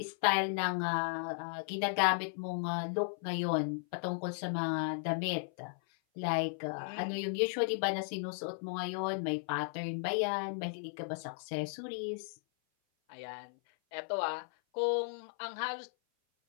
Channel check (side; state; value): right; silent; 54 dB below the other